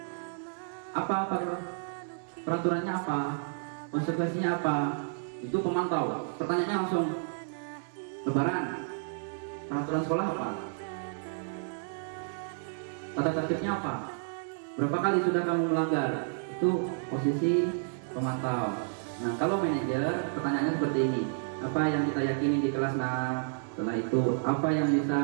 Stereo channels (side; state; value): left; silent; digital silence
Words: apa peraturannya apa? Konsekuensinya apa? Itu pemantau. Pertanyaannya langsung, lebaran, peraturan sekolah apa? Tata tertibnya apa? Berapa kali sudah kamu melanggar? Itu posisi pemantau. Nah kalau manajer, pertanyaannya seperti ini, apa yang kita yakini di kelas 6? Setelah itu apa yang bisa